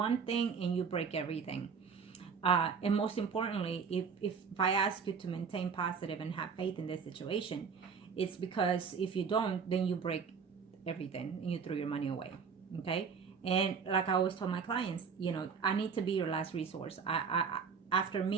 thing and you break everything. And most importantly, if I ask you to maintain positive and have faith in this situation, it's because if you don't, then you break everything and you throw your money away, okay? And like I always tell my clients, I need to be your last resource. After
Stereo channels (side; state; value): left; quieter; 6.0 dB